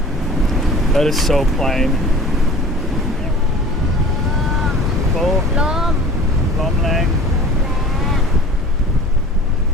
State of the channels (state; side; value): normal; both; correlation 0.43